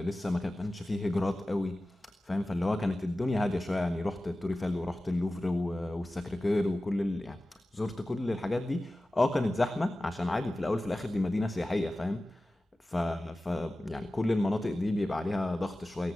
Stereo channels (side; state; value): both; normal; correlation 0.96